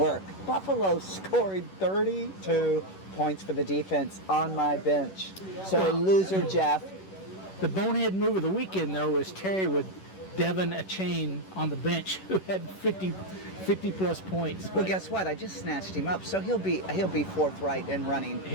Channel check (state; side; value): late; right; 11 ms